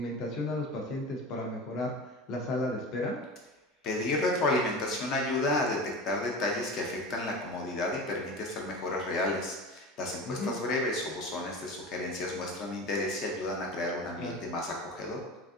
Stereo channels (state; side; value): normal; both; correlation 0.30